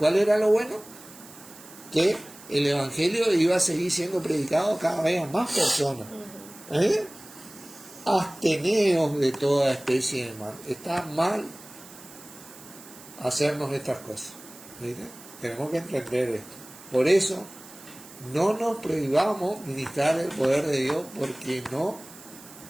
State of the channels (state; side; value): noise; right; hiss, 19 dB below the sound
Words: era lo bueno? Que el evangelio iba a seguir siendo predicado cada vez a más personas. Absteneos de toda especie de mal. Está mal hacernos estas cosas. ¿Viste? Tenemos que entender esto. Por eso, no nos prohibamos ministrar el poder de Dios porque no